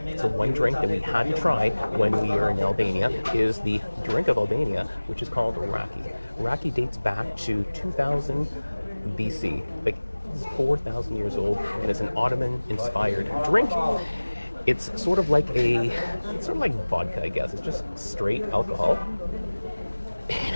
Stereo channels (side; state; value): both; inverted; correlation -1.00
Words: so one drink that we had to try when we were in Albania is the drink of Albania, which is called raki. Raki dates back to 2000 BC, like it's 4,000 years old, and it's an Ottoman-inspired drink. It's sort of like vodka, I guess. It's just straight alcohol. It